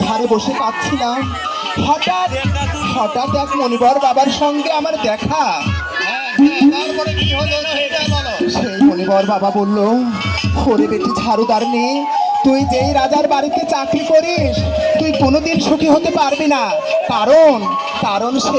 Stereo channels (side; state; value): both; identical; correlation 1.00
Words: ধারে বসে পাচ্ছিলাম, হঠাৎ এক মনিবর বাবার সঙ্গে আমার দেখা। সেই মনিবর বাবা বলল, ওরে বেটি ঝাড়ুদার নেই, তুই যেই রাজার বাড়িতে চাকরি করিস তুই কোনোদিন সুখী হতে পারবি না, কারণ